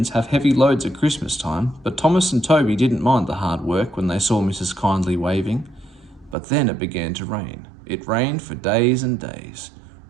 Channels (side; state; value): left; drops out; at 6.4 s